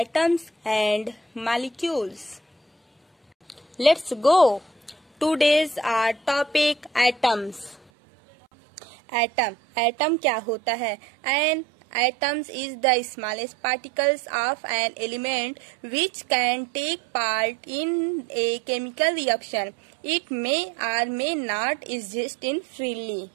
and molecules. Let's go. Today's our topic atoms. Atom क्या होता है? An atoms is the smallest particles of an element which can take part in a chemical reaction. It may or may not exist in freely.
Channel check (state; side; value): drops out; left; at 7.8 s